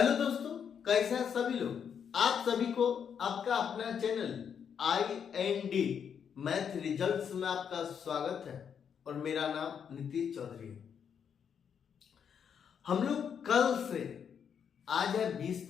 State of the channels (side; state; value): right; quieter; 7.6 dB